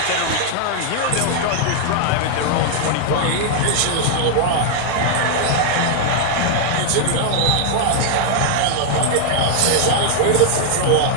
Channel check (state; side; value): different; both; correlation 0.00